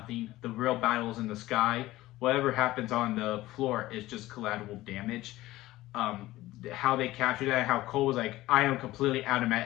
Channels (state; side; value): quieter; right; 17.0 dB